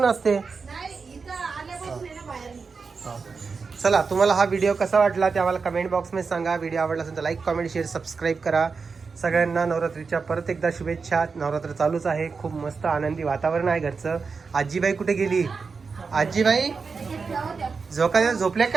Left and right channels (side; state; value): left; quieter; 5.0 dB